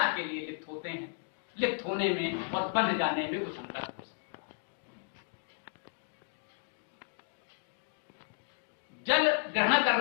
के लिए लिप्त होते हैं। लिप्त होने में और बंध जाने में कुछ अंतर हो सकता है। जल ग्रहण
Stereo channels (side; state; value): right; silent; digital silence